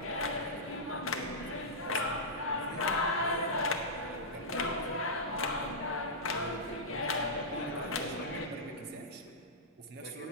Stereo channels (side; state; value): both; normal; correlation -0.13